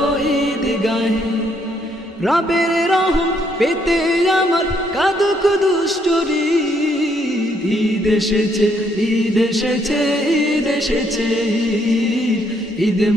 ঈদগাহে। রবের রহম পেতে আমার কাঁদুক দুষ্টরি, ঈদ এসেছে, ঈদ এসেছে, ঈদ এসেছে, ঈদ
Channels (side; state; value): both; normal; correlation 0.71